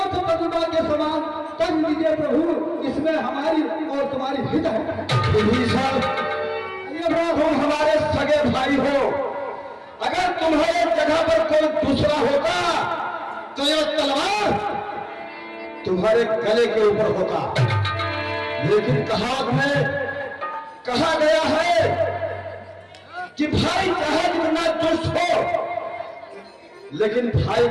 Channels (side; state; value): both; identical; correlation 1.00